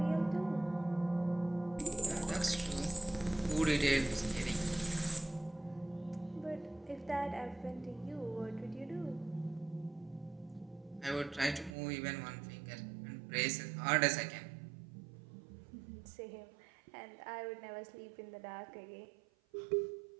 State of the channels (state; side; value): drops out; left; at 11.8 s